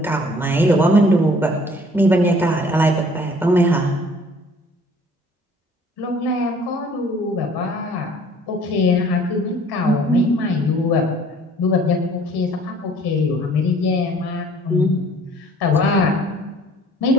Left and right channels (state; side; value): normal; both; correlation 0.54